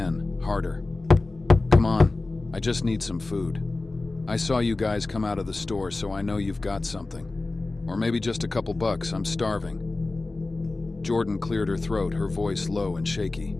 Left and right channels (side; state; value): right; quieter; 3.3 dB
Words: harder. "Come on, I just need some food. I saw you guys come out of the store, so I know you've got something. Or maybe just a couple bucks, I'm starving." Jordan cleared her throat, her voice low and shaky.